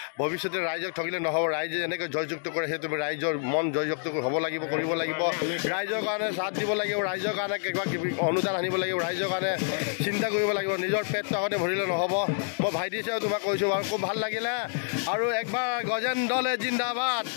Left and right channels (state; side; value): silent; right; digital silence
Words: ভৱিষ্যতে ৰাইজক ঠগিলে নহ'ব ৰাইজে যেনেকৈ জয়যুক্ত কৰে সেই তুমি ৰাইজৰ মন জয়যুক্ত হ'ব লাগিব কৰিব লাগিব ৰাইজৰ কাৰণে সাথ দিব লাগিব ৰাইজৰ কাৰণে কিবা কিবি অনুদান আনিব লাগিব ৰাইজৰ কাৰণে চিন্তা কৰিব লাগিব নিজৰ পেটটো আগতে ভৰিলে নহ'ব মই ভাইটি হিচাপে তোমাক কৈছোঁ বাৰু খুব ভাল লাগিলে আৰু একবাৰ গজেন দলে জিন্দাবাদ